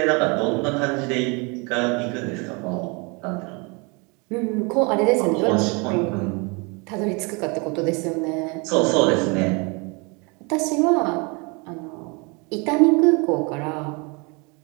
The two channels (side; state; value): left; quieter; 30.3 dB